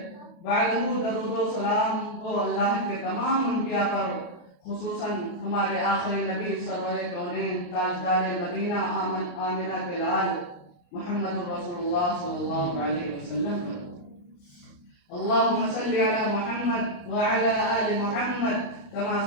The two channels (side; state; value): right; late; 28 ms